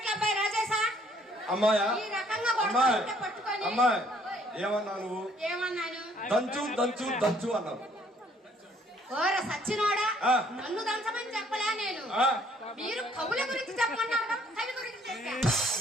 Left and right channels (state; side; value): normal; both; correlation 0.63